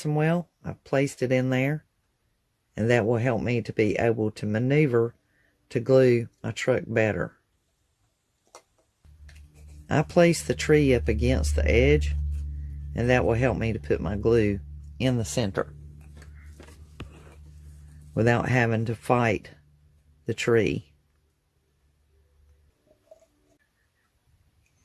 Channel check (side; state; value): both; identical; correlation 1.00